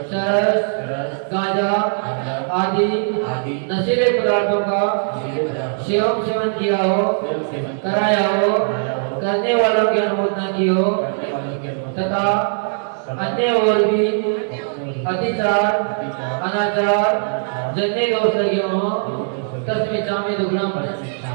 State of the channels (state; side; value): silent; left; digital silence